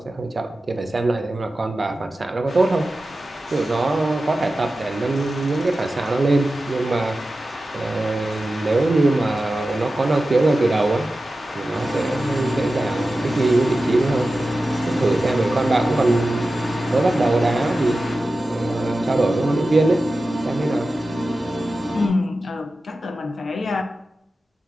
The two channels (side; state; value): both; normal; correlation 0.94